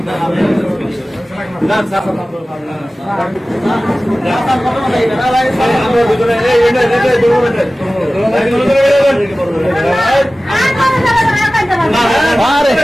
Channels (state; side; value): normal; both; correlation 0.97